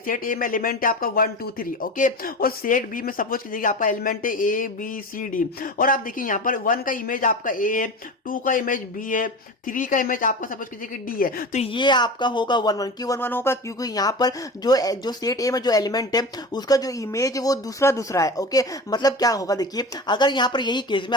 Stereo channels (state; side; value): normal; both; correlation 0.30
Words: ए में एलिमेंट है आपका 1, 2, 3। ओके, और सेट बी में सपोज कीजिए आपका एलिमेंट है ए बी सी डी। और आप देखिए यहाँ पर 1 का इमेज आपका ए है, 2 का इमेज बी है, 3 का इमेज आपका सपोज कीजिए कि डी है। तो ये आपका होगा 1-1। क्यों 1-1 होगा, क्योंकि यहाँ पर जो सेट ए में जो एलिमेंट है उसका जो इमेज है वो दूसरा है। ओके, मतलब क्या होगा, देखिए अगर यहाँ पर यही केस में